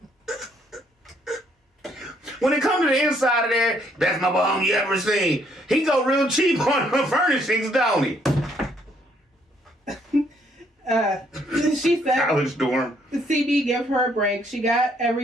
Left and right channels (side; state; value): both; normal; correlation 0.68